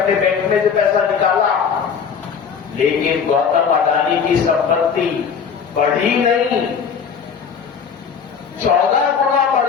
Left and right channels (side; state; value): right; quieter; 6.7 dB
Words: बैंक में से पैसा निकाला, लेकिन गौतम अडानी की संपत्ति बढ़ी नहीं, 14 गुना